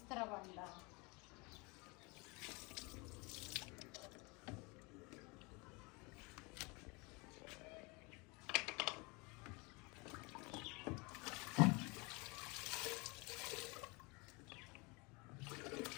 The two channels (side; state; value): right; quieter; 27.8 dB